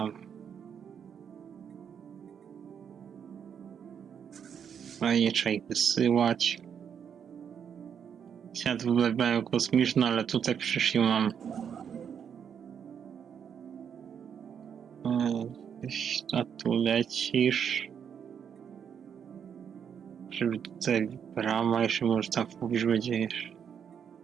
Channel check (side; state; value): left; quieter; 7.8 dB